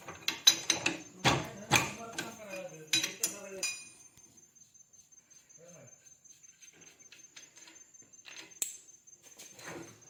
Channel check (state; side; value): identical; both; correlation 1.00